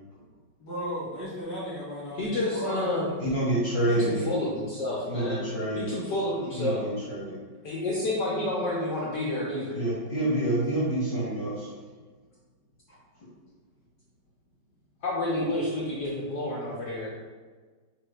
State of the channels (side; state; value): right; late; 5.3 ms